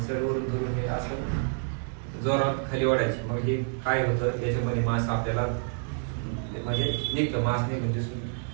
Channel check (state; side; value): silent; left; 59 dB below the other